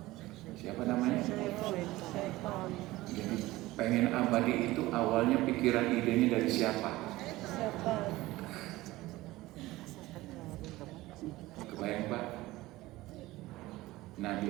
Siapa namanya? Jadi pengen abadi itu awalnya pikiran idenya dari siapa? Kebayang Pak?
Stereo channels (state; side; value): quieter; left; 18.3 dB